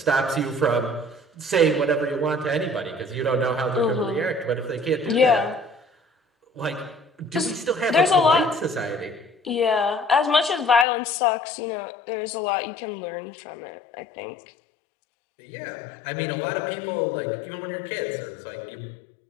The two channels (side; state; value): right; drops out; at 10.9 s